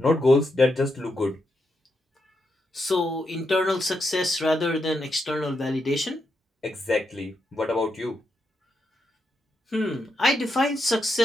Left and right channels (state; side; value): normal; both; correlation 0.82